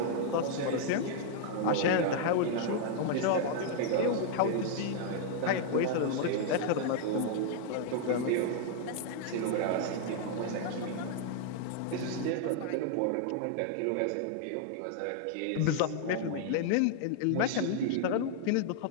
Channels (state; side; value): different; both; correlation 0.00